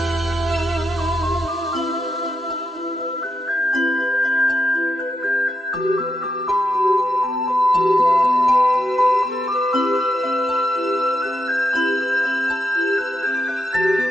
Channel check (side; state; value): both; normal; correlation 0.83